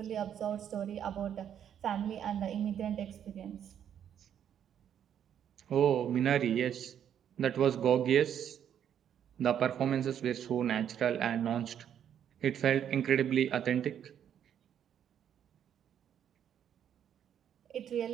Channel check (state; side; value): quieter; left; 9.3 dB